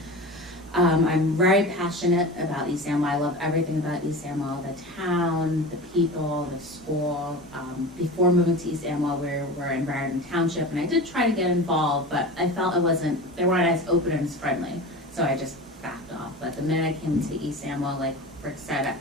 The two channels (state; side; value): normal; both; correlation 0.31